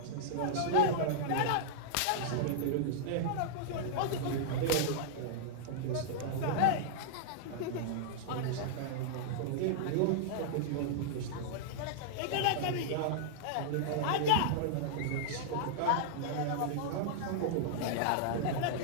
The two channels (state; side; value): different; both; correlation -0.02